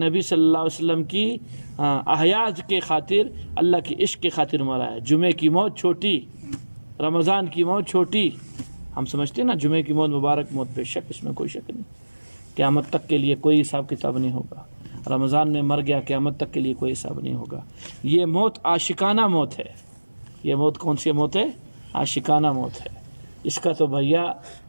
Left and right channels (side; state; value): both; inverted; correlation -1.00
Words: صلی اللہ علیہ وسلم کی احیاء کے خاطر، اللہ کے عشق کے خاطر مرا ہے. جمعے کی موت چھوٹی، رمضان کی موت چھوٹی. ہم سمجھتے ہیں نا جمعے کی موت مبارک موت، بے شک اس میں کوئی شک نہیں. قیامت تک کے لیے کوئی حساب کتاب نہیں ہوگا. رمضان میں مر گیا، قیامت تک کے لیے کوئی حساب نہیں ہوگا. یہ موت عاشقانہ موت ہے. یہ موت کون سی موت ہے؟ عاشقانہ موت ہے. اس کا تو بھیا